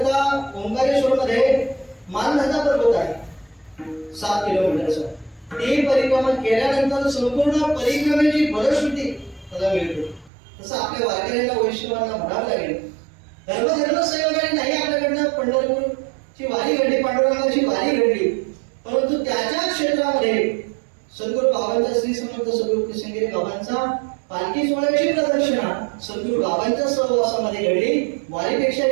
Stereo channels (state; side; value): drops out; left; at 10.3 s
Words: ओंकारेश्वर मध्ये मानधता पर्वत आहे 7 किलोमीटरचा ती परिक्रमा केल्यानंतर संपूर्ण परिक्रमेची फलश्रुती त्याला मिळते तसं आपल्या वारकऱ्यांना वैष्णवांना म्हणावं लागेल धर्म संयोगाने नाही आपल्याकडनं पंढरपूरची वारी घडली पांडुरंगाची वारी घडली परंतु त्याच्या क्षेत्रामध्ये सद्गुरु बाबांचा श्री समर्थ सद्गुरु किसनगिरी बाबांचा पालखी सोहळ्याची प्रदक्षिणा सद्गुरु बाबांच्या सहवासामध्ये घडली वारीपेक्षा